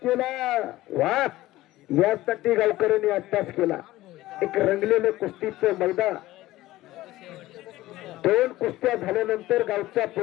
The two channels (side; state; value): right; quieter; 16.7 dB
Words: केला वा यासाठी गावकऱ्यांनी अभ्यास केला एक रंगलेलं कुस्तीचं मैदान दोन कुस्त्या झाल्यानंतर गावचा